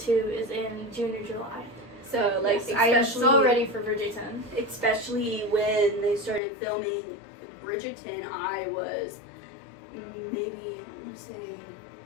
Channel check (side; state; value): right; drops out; at 6.4 s